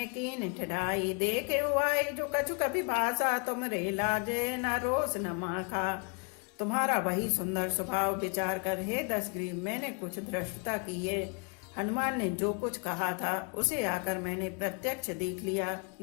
कीन ठिठाई, देखे हुआई जो कछु कभी भाषा, तुम रे लाजे न रोस न माखा। तुम्हारा वही सुंदर स्वभाव विचार कर हे दशग्रीव, मैंने कुछ धृष्टता की है। हनुमान ने जो कुछ कहा था उसे आकर मैंने प्रत्यक्ष देख लिया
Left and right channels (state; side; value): quieter; right; 37.2 dB